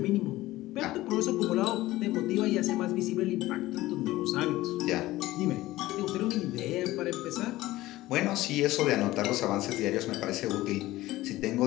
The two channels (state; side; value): quieter; right; 17.2 dB